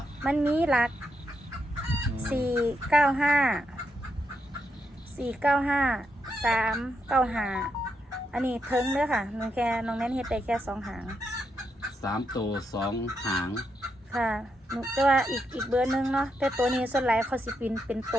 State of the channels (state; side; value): normal; both; correlation 0.82